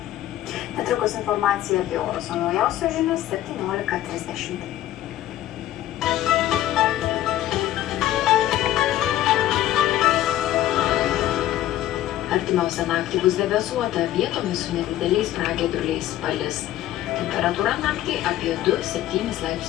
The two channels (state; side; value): quieter; right; 13.4 dB